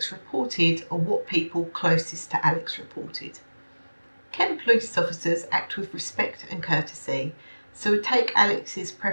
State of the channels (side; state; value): both; inverted; correlation -1.00